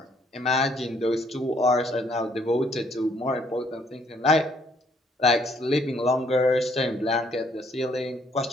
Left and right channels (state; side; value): normal; both; correlation 0.66